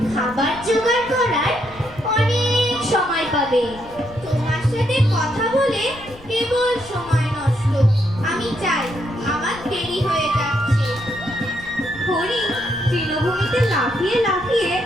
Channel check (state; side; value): noise; left; rumble, 21 dB below the sound